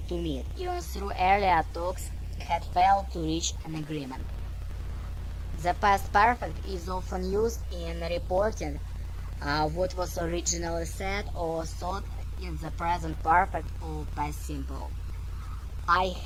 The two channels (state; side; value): identical; both; correlation 1.00